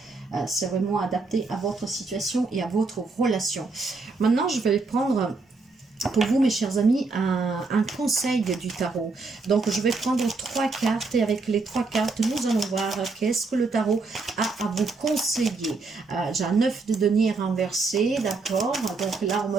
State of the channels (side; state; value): left; quieter; 3.9 dB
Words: C'est vraiment adapté à votre situation et à votre relation. Maintenant, je vais prendre pour vous, mes chers amis, un conseil du tarot. Donc, je vais prendre 3 cartes et avec les 3 cartes, nous allons voir qu'est-ce que le tarot a à vous conseiller. J'ai un 9 de denier renversé, d'accord. Donc là, on me